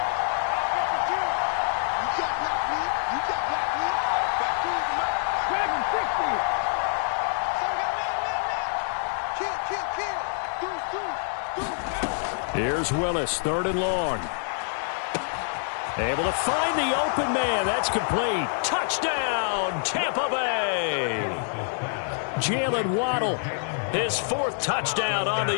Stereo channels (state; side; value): silent; right; 61 dB below the other